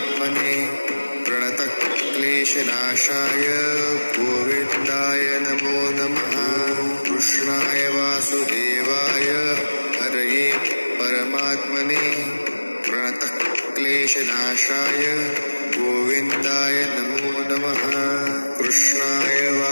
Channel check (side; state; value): both; inverted; correlation -1.00